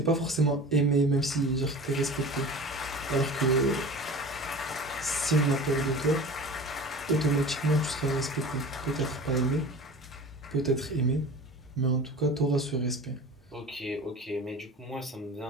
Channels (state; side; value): normal; both; correlation 0.37